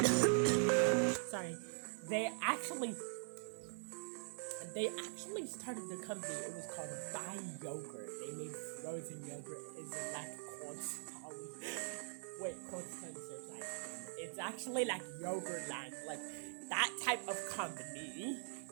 Sorry. They actually started the company. It was called Buy Yogurt. They made frozen yogurt. Is it like Constance's ice cream? It's actually like Yogurtland, like that type of company.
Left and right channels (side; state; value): left; silent; digital silence